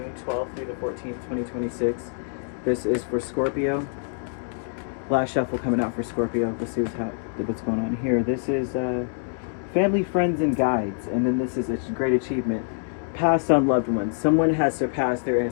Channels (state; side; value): silent; right; digital silence